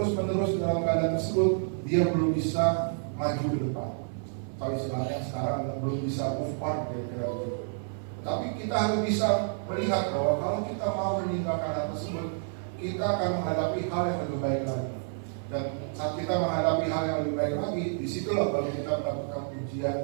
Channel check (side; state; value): left; silent; 58 dB below the other